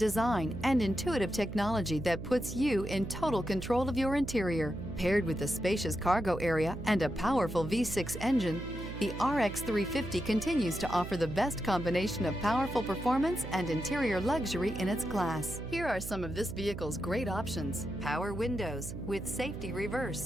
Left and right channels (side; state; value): right; noise; hum, 8 dB below the sound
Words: and intuitive technology that puts you in total control of your interior. Paired with a spacious cargo area and a powerful V6 engine, the RX 350 continues to offer the best combination of powerful performance and interior luxury in its class. Here are some of this vehicle's great options: power windows with safety